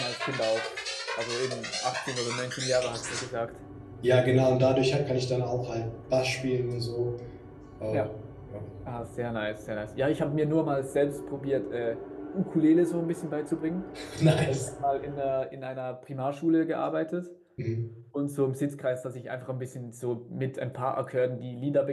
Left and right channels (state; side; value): identical; both; correlation 1.00